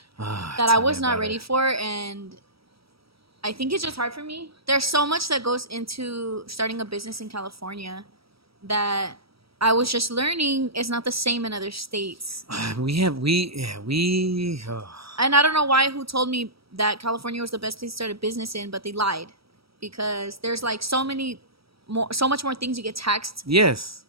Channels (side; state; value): left; late; 0.76 ms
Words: that I Tell me was not about ready it. for, and I think it's just hard for me. There's so much that goes into starting a business in California that I was just learning is not the same in other states. We. And I don't know who told me that California was the best place to start a business in, but they lied because there's like so much more things you get taxed Yes.